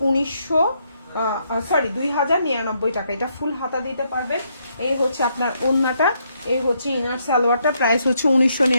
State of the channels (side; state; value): both; inverted; correlation -0.75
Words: 2099 টাকা। এটা ফুল হাতা দিতে পারবেন। এই হচ্ছে আপনার ওড়নাটা, এই হচ্ছে ইনার সালোয়ারটা। প্রাইস হচ্ছে